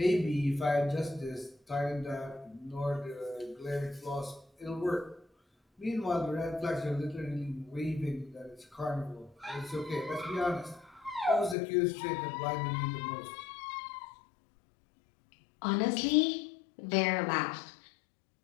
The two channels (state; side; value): drops out; right; at 11.6 s